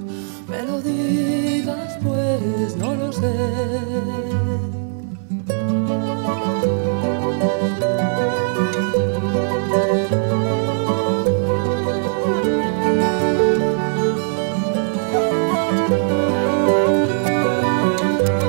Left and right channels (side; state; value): left; silent; digital silence